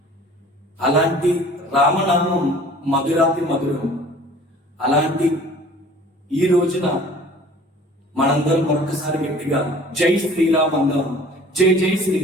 అలాంటి రామనామం మధురాతి మధురం. అలాంటి ఈ రోజున మనందరం మరొకసారి గట్టిగా జై శ్రీరామ్ అందాం, జై జై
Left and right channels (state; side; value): normal; both; correlation 0.48